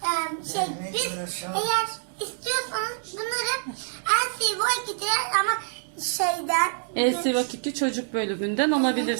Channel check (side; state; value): left; silent; digital silence